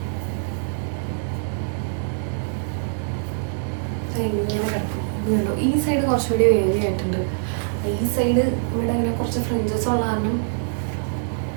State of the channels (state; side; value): silent; left; 56 dB below the other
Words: ഇങ്ങനെ കിടക്കും. കണ്ടോ, ഈ സൈഡ് കുറച്ചുകൂടി വേവി ആയിട്ടുണ്ട്. ഈ സൈഡ് ഇവിടെ ഇങ്ങനെ കുറച്ച് ഫ്രിഞ്ചസ് ഉള്ള കാരണം